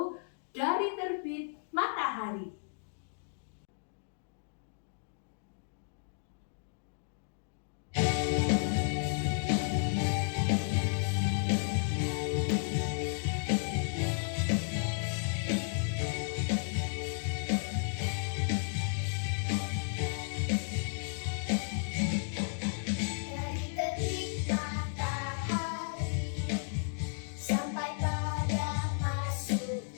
Dari Terbit Matahari.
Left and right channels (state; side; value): silent; right; digital silence